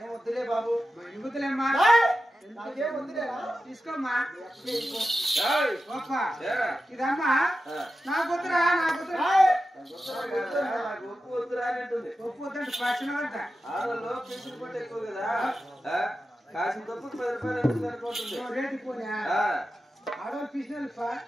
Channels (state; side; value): normal; both; correlation 0.92